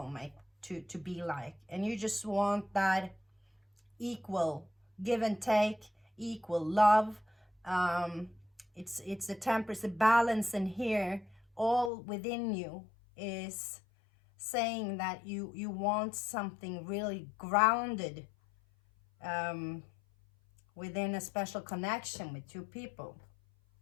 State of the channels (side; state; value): right; drops out; at 11.9 s